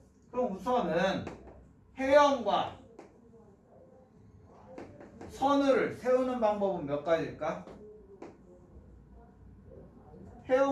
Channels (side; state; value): both; identical; correlation 1.00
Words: 그럼 우선은 혜영과 선우를 세우는 방법은 몇 가지일까?